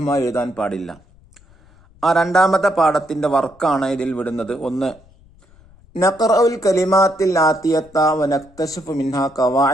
എഴുതാൻ പാടില്ല. ആ 2ാമത്തെ പാഠത്തിന്റെ വർക്കാണ് ഇതിൽ വിടുന്നത്. 1. നഖറഉൽ കലിമാത്തിൽ ആതിയത്ത വ നക്തശിഫു മിൻഹാ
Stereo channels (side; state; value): left; noise; rumble, 28 dB below the sound